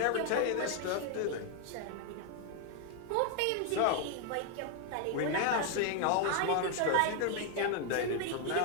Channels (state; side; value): different; both; correlation 0.00